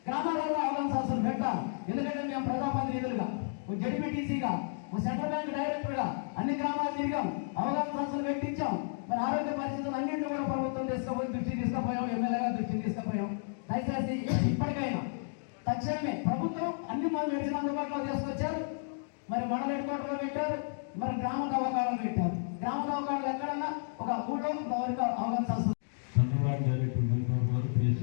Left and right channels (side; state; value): right; silent; digital silence